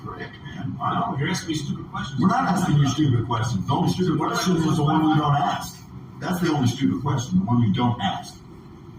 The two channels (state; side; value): identical; both; correlation 1.00